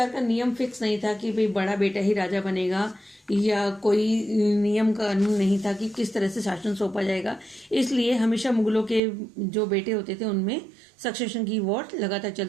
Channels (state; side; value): drops out; left; at 9.0 s